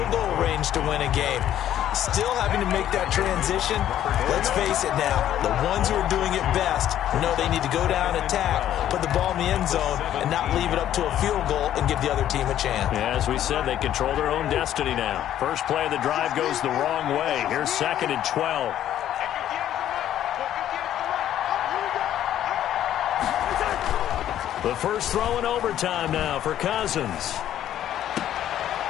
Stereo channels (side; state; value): right; quieter; 11.5 dB